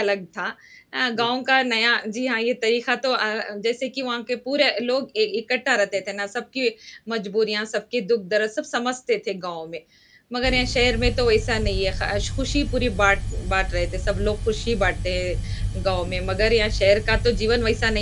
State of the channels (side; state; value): both; identical; correlation 1.00